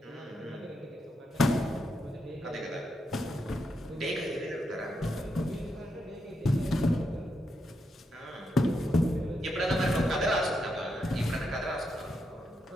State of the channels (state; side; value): normal; both; correlation 0.83